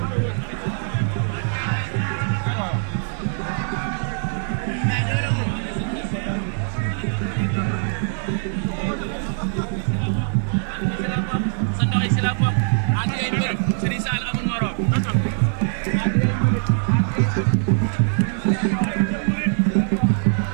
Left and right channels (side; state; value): left; silent; 64 dB below the other